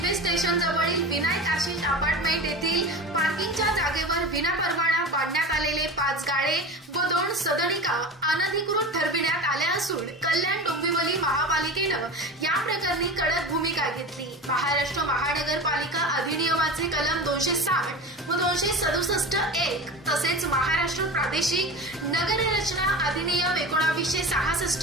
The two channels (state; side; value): normal; both; correlation 0.30